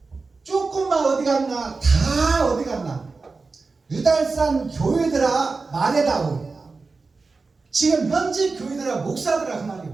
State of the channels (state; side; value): quieter; left; 4.1 dB